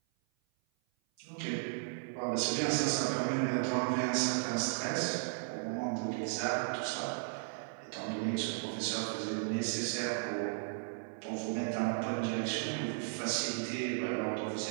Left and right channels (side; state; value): left; silent; 54 dB below the other